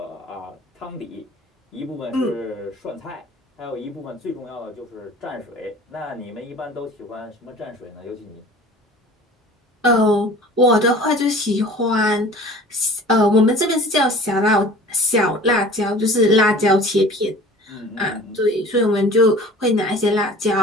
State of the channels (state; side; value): normal; both; correlation 0.45